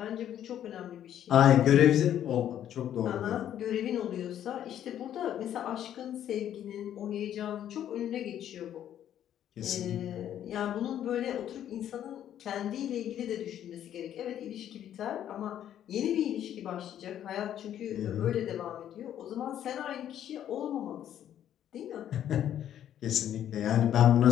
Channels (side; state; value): right; quieter; 10.7 dB